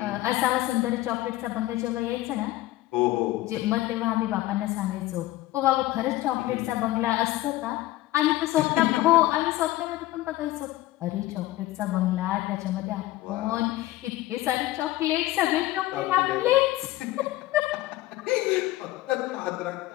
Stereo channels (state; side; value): quieter; right; 16.7 dB